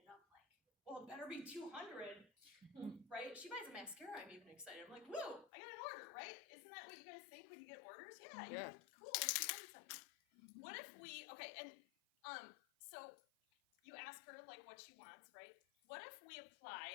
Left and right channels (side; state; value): right; drops out; at 5.5 s